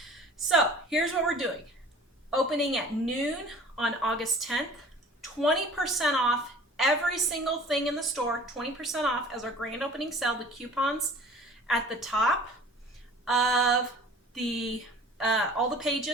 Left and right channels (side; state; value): both; normal; correlation 0.46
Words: So here's what we're doing. Opening at noon on August 10th, 20% off every single thing in the store, 20% off as our grand opening sale. The coupons at the top of the all the